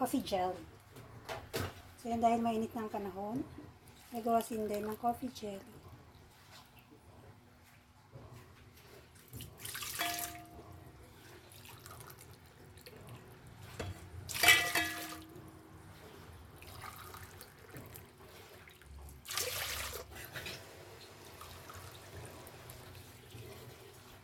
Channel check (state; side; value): identical; both; correlation 1.00